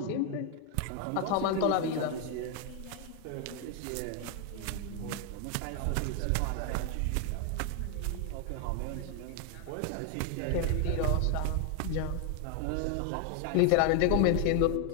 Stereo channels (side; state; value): both; different; correlation 0.01